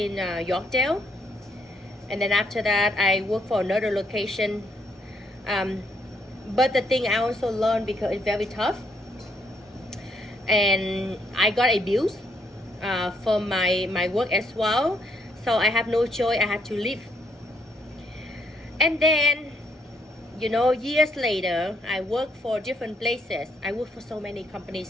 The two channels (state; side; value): normal; both; correlation 0.72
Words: Yorkdale. And then after that, I work for another location. But the thing I also learned, because it's very tough, and I got abused for my work as well. So I have no choice, I had to leave. And then, you know, years later, I worked for different places. I worked for so many companies.